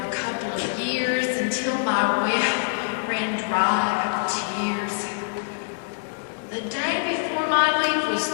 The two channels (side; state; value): right; silent; digital silence